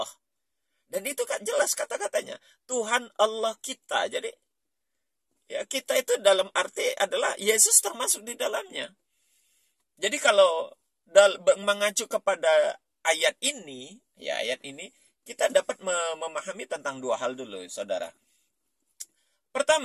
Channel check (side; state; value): both; identical; correlation 1.00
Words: Dan itu kan jelas kata-katanya. Tuhan Allah kita. Jadi ya kita itu dalam arti adalah Yesus termasuk di dalamnya. Jadi kalau mengacu kepada ayat ini, kita dapat memahami tentang dua hal dulu, saudara.